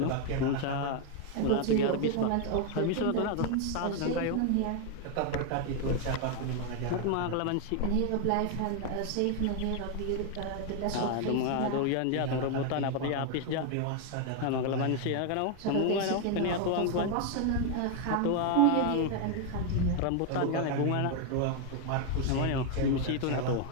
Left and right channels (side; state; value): both; different; correlation 0.01